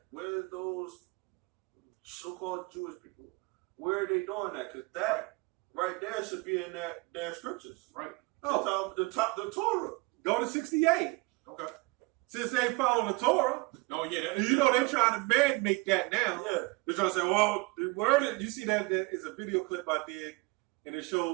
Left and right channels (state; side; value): quieter; left; 26.2 dB